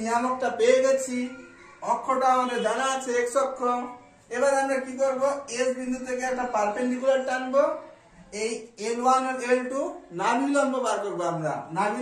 পেয়ে গেছি, অক্ষটা আমাদের জানা আছে x অক্ষ। এবার আমরা কি করব? s বিন্দু থেকে একটা পারপেন্ডিকুলার টানবো, এই L1 আর L2 নাভিলম্ব বার করব। আমরা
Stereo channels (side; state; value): both; identical; correlation 1.00